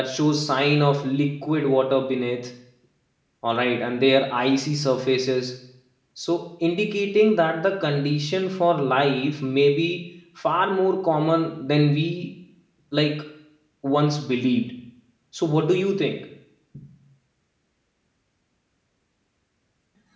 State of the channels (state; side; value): identical; both; correlation 1.00